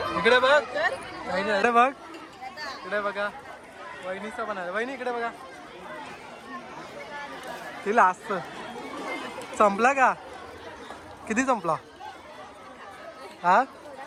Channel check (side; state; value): both; identical; correlation 1.00